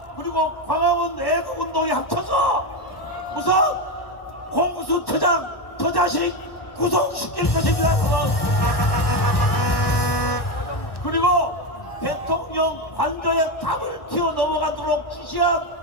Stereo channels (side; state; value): right; late; 1.1 ms